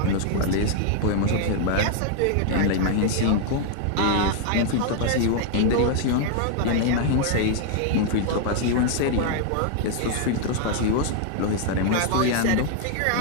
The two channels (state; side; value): different; both; correlation 0.00